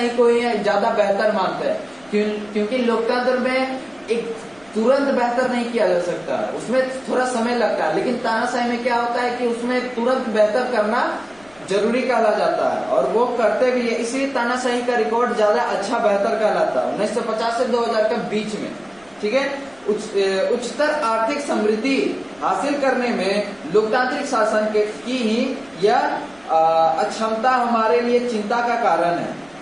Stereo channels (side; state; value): left; noise; rumble, 30 dB below the sound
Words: को ही ज्यादा बेहतर मानते हैं, क्योंकि लोकतंत्र में एक तुरंत बेहतर नहीं किया जा सकता, उसमें थोड़ा समय लगता है। लेकिन तानाशाही में क्या होता है कि उसमें तुरंत बेहतर करना जरूरी कहला जाता है और वो करते भी है, इसलिए तानाशाही का रिकॉर्ड ज्यादा अच्छा बेहतर कहलाता है 1950 से 2000 के बीच में। ठीक है, उच्चतर आर्थिक समृद्धि हासिल करने में लोकतांत्रिक शासन की ही यह अक्षमता हमारे लिए चिंता का कारण है।